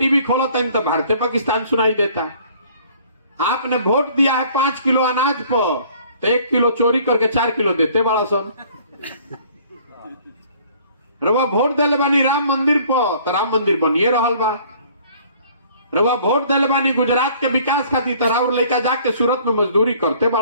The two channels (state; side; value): inverted; both; correlation -0.55